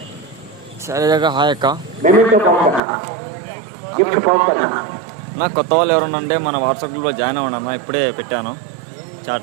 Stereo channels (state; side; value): drops out; left; at 2.8 s